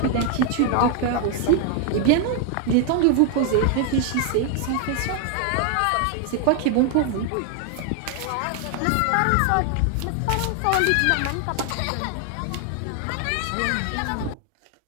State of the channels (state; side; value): different; both; correlation 0.00